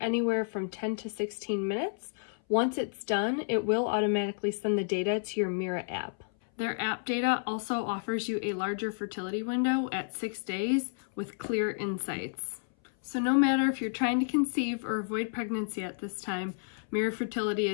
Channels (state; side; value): silent; right; 57 dB below the other